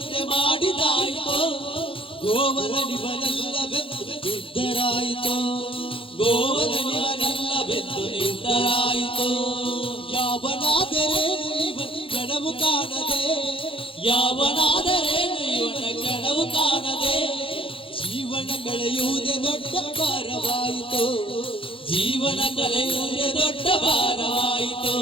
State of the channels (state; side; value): late; right; 0.26 ms